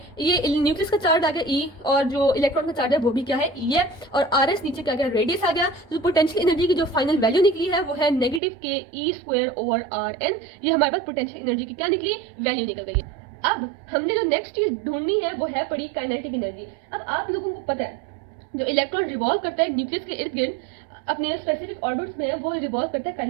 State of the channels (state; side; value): drops out; left; at 8.4 s